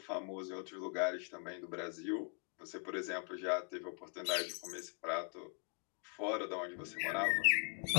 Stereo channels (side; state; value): right; quieter; 39.5 dB